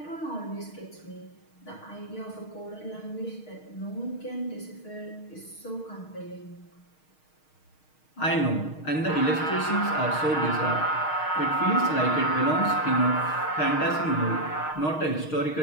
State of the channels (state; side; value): late; right; 6.4 ms